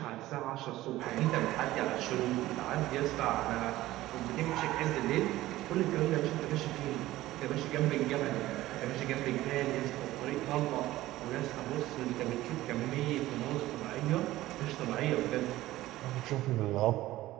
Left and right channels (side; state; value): left; quieter; 16.2 dB